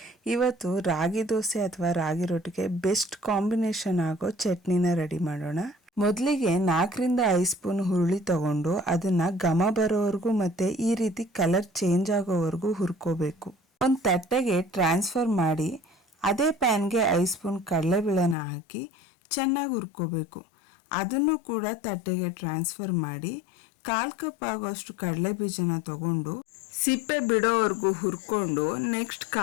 ಇವತ್ತು ರಾಗಿ ದೋಸೆ ಅಥವಾ ರಾಗಿ ರೊಟ್ಟಿಗೆ ಬೆಸ್ಟ್ ಕಾಂಬಿನೇಷನ್ ಆಗೋ ಚಟ್ನಿನ ರೆಡಿ ಮಾಡೋಣ. ಮೊದಲಿಗೆ 4-5 ಸ್ಪೂನ್ ಹುರುಳಿ ತಗೊಂಡು ಅದನ್ನ ಘಮ ಬರೋವರೆಗೂ ಮತ್ತೆ ಈ ರೀತಿ ಕಲರ್ ಚೇಂಜ್ ಆಗೋವರೆಗೂ ಹುರ್ಕೋಬೇಕು. ಒಂದು ತಟ್ಟೆಗೆ ಟ್ರಾನ್ಸ್ಫರ್ ಮಾಡಿ ಅದೇ ಪ್ಯಾನ್ಗೆ 5 ಸ್ಪೂನ್ ಕಡಲೆಬೇಳೆನ ಹಾಕಿ ಚೆನ್ನಾಗಿ ಹುರ್ಕೋಬೇಕು. ಅದನ್ನು ಕೂಡ ತಟ್ಟೆಗೆ ಟ್ರಾನ್ಸ್ಫರ್ ಮಾಡಿ 1/4 ಕಪ್ ಆಗೋಷ್ಟು ಕಡಲೆ ಬೀಜನ ತಗೊಂಡು ಸಿಪ್ಪೆ ಬಿಡೋವರೆಗೂ ಹುರ್ಕೊಂಡು, ನೆಕ್ಸ್ಟ್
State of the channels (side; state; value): right; drops out; at 18.4 s